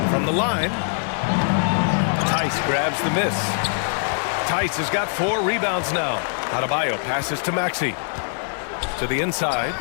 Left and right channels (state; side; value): silent; right; 64 dB below the other